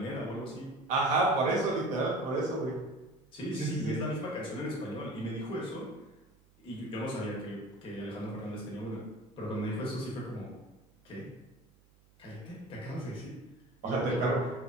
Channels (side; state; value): right; noise; hum, 30 dB below the sound